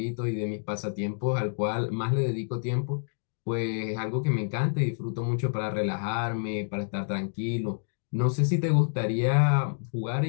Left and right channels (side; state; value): right; silent; digital silence